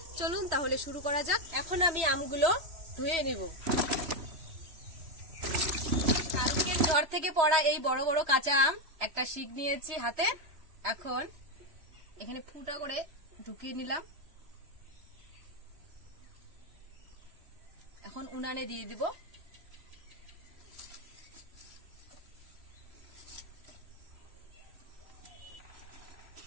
চলুন তাহলে শুরু করা যাক। এখন আমি আমগুলো ধুয়ে নিব। কালকে ঘর থেকে পড়া এই বড় বড় কাঁচা আম একটা শিক নিয়েছি হাতে। এখন এখানে ফুটা করে ঢুকিয়ে নিলাম। এখন উনানে দিয়ে দিব।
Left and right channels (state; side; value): late; left; 3.1 ms